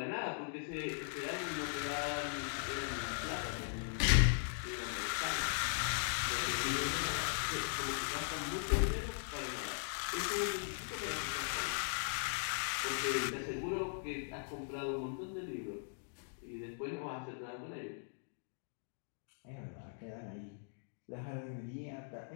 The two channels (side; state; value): right; silent; digital silence